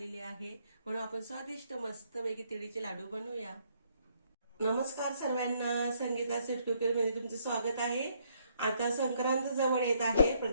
आहे म्हणून आपण स्वादिष्ट मस्तपैकी तिळीचे लाडू बनवूया। नमस्कार सर्वांना, संगीता कुकर मध्ये तुमचे स्वागत आहे। आता संक्रांत जवळ येत आहे।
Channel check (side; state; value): both; inverted; correlation -0.70